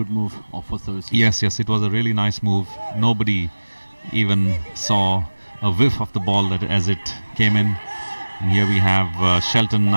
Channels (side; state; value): both; inverted; correlation -1.00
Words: move for services. Yes, it was a really nice move. Nobody even saw a whiff of the ball that as it came in. And here we have Shelton